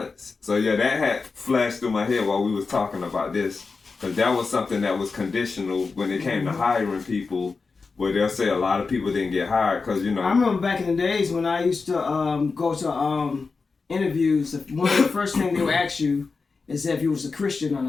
So yeah, that had flashed through my head while we was talking about this, because that was something that was conditional when it came to hiring people, where they'll say a lot of people didn't get hired because, you know. I remember back in the days when I used to go to interviews. One of the first things they would ask you is if you was a Christian or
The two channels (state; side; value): quieter; right; 4.5 dB